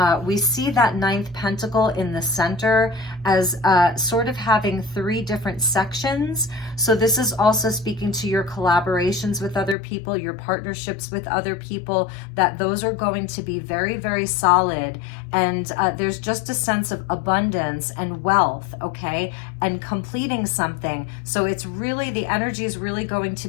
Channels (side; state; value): right; drops out; at 9.8 s